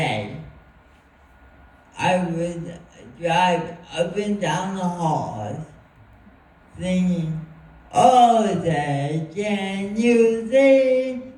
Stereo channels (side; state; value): both; identical; correlation 1.00